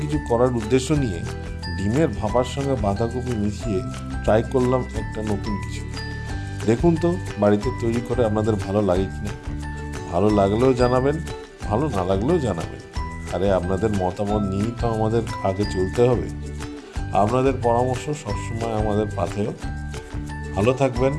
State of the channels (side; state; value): both; identical; correlation 1.00